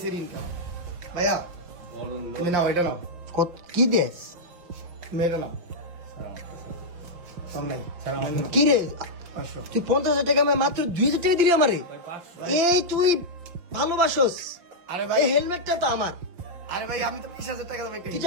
এর ইনকাম। ভাইয়া তুমি নাও, এটা নাও, কত কি দেস তুমি এটা নাও। সামনে কি রে 500। তুই 50,000 টাকা আমি মাত্র 2,000 টাকা দিলি আমারে। এই তুই ভালোবাসোস। আরে ভাই, এই হেলমেটটা তো আমার। আরে ভাই আমি তো 20,000 টাকা দেব একটা। তুই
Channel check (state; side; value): late; left; 5.7 ms